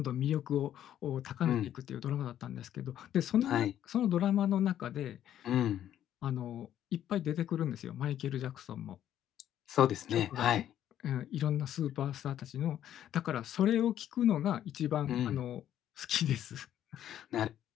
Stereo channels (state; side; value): quieter; right; 11.1 dB